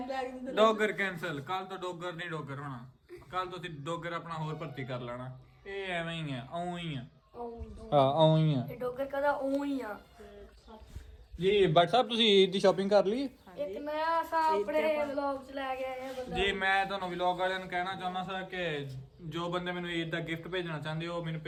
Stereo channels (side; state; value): both; identical; correlation 1.00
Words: बैग ਡੋਗਰ ਕੈਂਸਲ। ਕੱਲ ਤੋਂ ਡੋਗਰ ਨਹੀਂ ਡੋਗਰ ਹੋਣਾ। ਕੱਲ ਤੋਂ ਤੁਸੀਂ ਡੋਗਰ ਆਪਣਾ ਹੋਰ ਭਰਤੀ ਕਰ ਲੈਣਾ। ਇਹ ਐਵੇਂ ਹੀ ਆ, ਆਉਂ ਹੀ ਆ। ਹਾਂ ਆਉਂ ਹੀ ਆ। ये डॉक्टर कहता ऊं ही आ ਜੀ ਬੱਟ ਸਾਹਿਬ ਤੁਸੀਂ ਈਦ ਦੀ ਸ਼ਾਪਿੰਗ ਕਰ ਲਈ? एक नया सा अपने व्लॉग च ला गया है बंदा ਜੀ ਮੈਂ ਤੁਹਾਨੂੰ ਵਲੌਗ ਵਾਲਿਆਂ ਨੂੰ ਕਹਿਣਾ ਚਾਹੁੰਦਾ ਸਾਂ ਕਿ ਜੋ ਬੰਦੇ ਮੈਨੂੰ ਈਦ ਦਾ ਗਿਫਟ ਭੇਜਣਾ ਚਾਹੁੰਦੇ ਹੋ ਮੈਨੂੰ